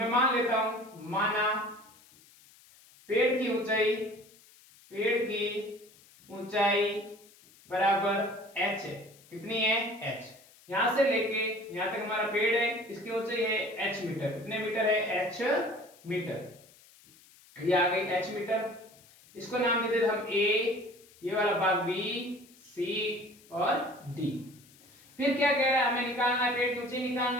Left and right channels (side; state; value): left; noise; hiss, 26 dB below the sound